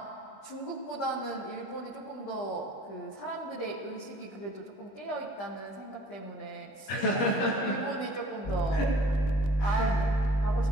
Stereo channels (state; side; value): late; right; 21 ms